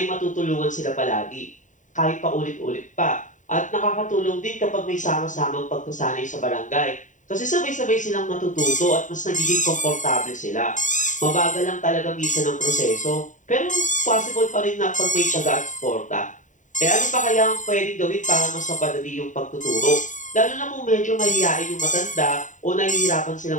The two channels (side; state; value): right; late; 0.36 ms